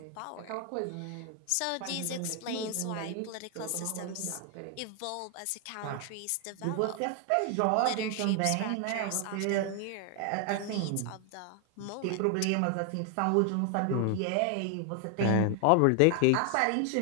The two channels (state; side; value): different; both; correlation 0.00